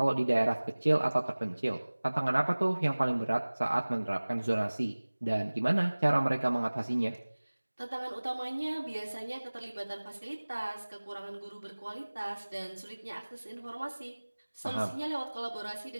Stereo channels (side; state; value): both; inverted; correlation -1.00